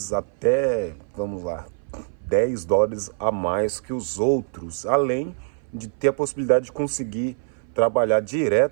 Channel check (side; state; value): left; silent; 59 dB below the other